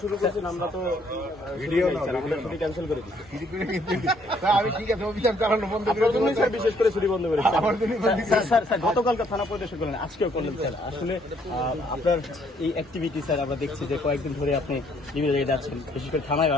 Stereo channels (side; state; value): both; normal; correlation 0.66